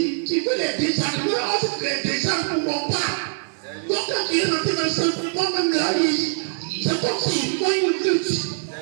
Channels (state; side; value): silent; left; digital silence